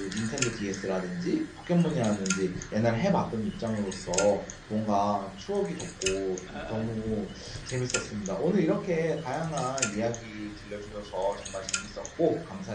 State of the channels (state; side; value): identical; both; correlation 1.00